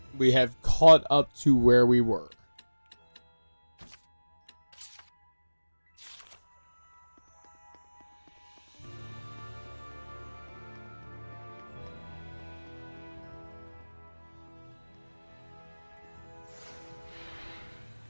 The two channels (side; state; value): both; inverted; correlation -1.00